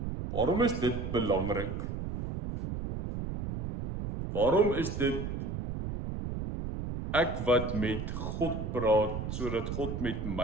Waarom is dit belangrik? Waarom is dit ek wat met God praat, sodat God met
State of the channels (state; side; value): noise; right; rumble, 5 dB below the sound